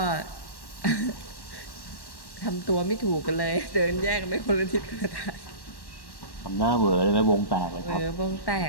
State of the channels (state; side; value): late; right; 1.1 ms